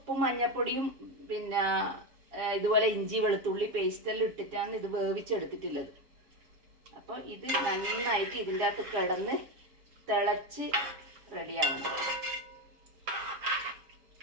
മഞ്ഞപ്പൊടിയും പിന്നെ ഇതുപോലെ ഇഞ്ചി വെളുത്തുള്ളി പേസ്റ്റെല്ലാം ഇട്ടിട്ടാണ് ഇത് വേവിച്ചെടുത്തിട്ടുള്ളത്. അപ്പൊ ഇത് നന്നായിട്ട് ഇതിൻ്റെ അകത്ത് കിടന്ന് തിളച്ച് റെഡിയാവണം.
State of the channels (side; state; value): left; late; 7.2 ms